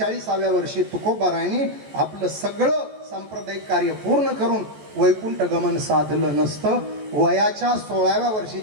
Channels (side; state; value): left; late; 14 ms